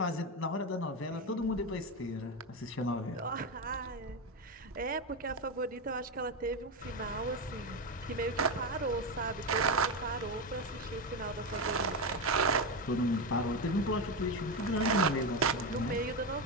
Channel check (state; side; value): normal; both; correlation 0.13